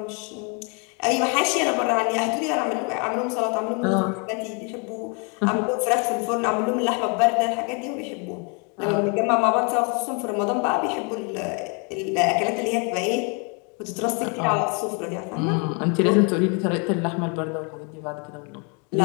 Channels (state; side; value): quieter; right; 35.1 dB